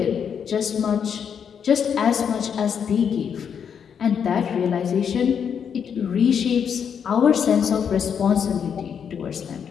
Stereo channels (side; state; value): right; quieter; 7.5 dB